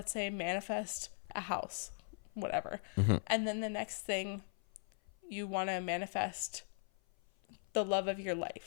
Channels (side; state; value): right; silent; 52 dB below the other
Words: say, manifest a house, whatever. And then the next thing you want to manifest the love of your